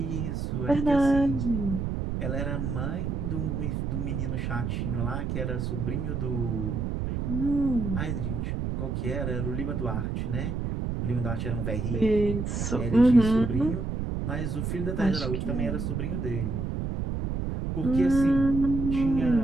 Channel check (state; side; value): noise; right; rumble, 2 dB below the sound